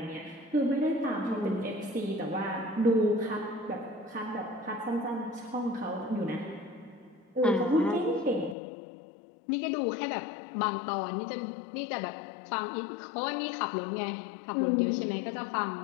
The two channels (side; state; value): right; drops out; at 8.6 s